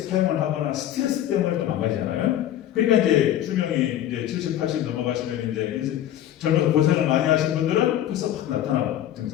하거나 스트레스 때문에 또 망가지잖아요. 그러니까 이제 수명이 이제 70, 80 넘어가시면 이제 젊어서 고생을 많이 하신 분들은 벌써 확 나타나고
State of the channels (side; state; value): right; quieter; 11.9 dB